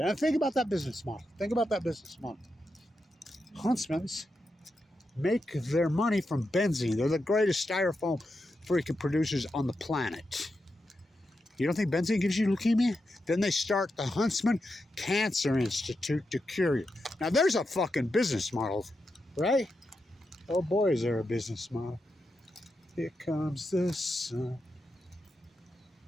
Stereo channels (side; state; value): both; normal; correlation 0.87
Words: And think about that business model. Think about that business model. Huntsmans make their money from benzene. They're the greatest styrofoam freaking producers on the planet. You don't think benzene gives you leukemia? Then they start the Huntsman Cancer Institute to cure you. Now there's a fucking business model, right? Oh boy, is there a business model. Here comes the sun.